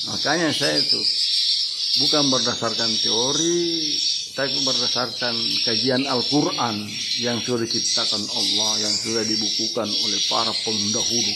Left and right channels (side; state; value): both; identical; correlation 1.00